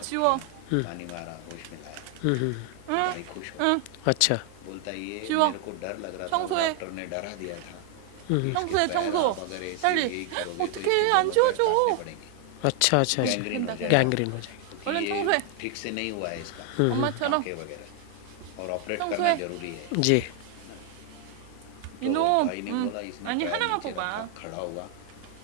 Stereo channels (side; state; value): both; different; correlation 0.00